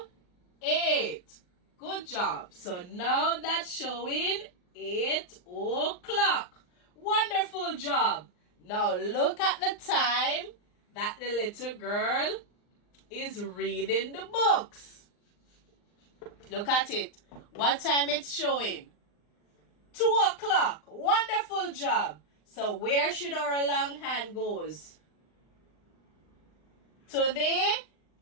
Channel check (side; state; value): right; late; 39 ms